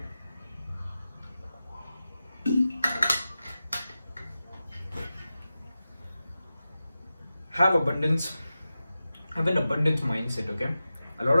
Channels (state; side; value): inverted; both; correlation -0.93